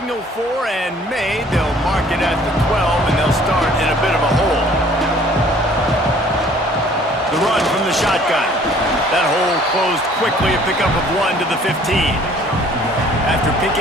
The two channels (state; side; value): normal; both; correlation 0.55